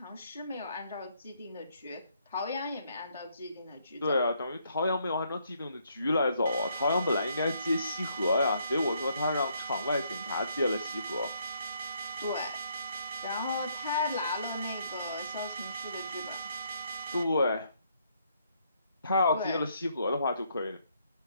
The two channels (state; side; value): inverted; both; correlation -0.71